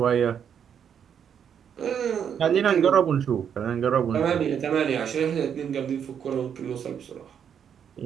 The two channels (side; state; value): left; quieter; 8.2 dB